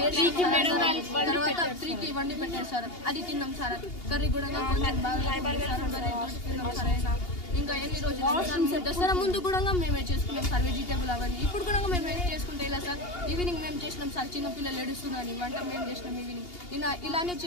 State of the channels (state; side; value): late; right; 2.8 ms